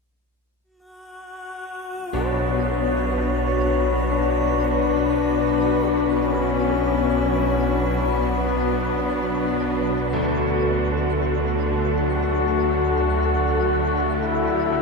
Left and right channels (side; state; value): both; normal; correlation 0.32